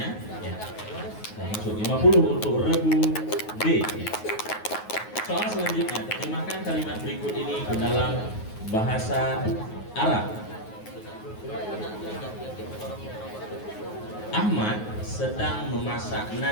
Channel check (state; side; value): late; right; 9.4 ms